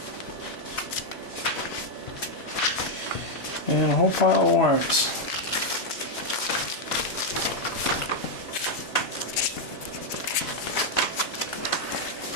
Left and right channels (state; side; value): normal; both; correlation 0.00